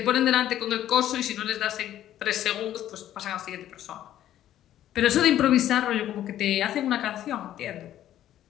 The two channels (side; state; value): right; quieter; 12.2 dB